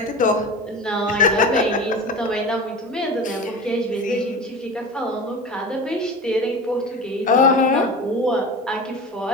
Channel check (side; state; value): both; normal; correlation 0.32